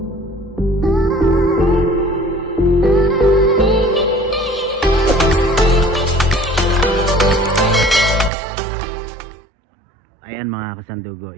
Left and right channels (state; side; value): drops out; left; at 8.3 s